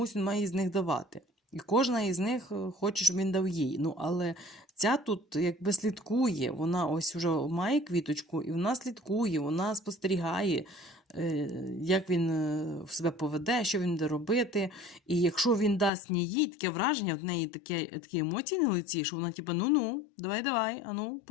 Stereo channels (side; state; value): right; drops out; at 15.9 s